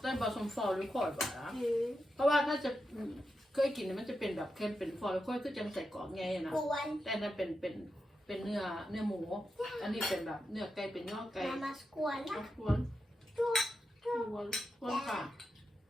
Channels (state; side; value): normal; both; correlation 0.87